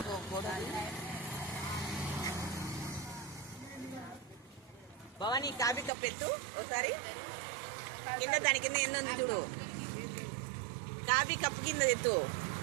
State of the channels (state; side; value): drops out; left; at 5.9 s